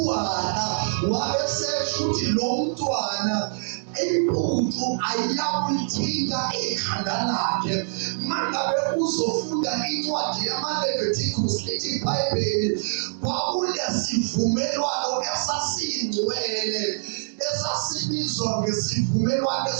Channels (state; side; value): silent; left; digital silence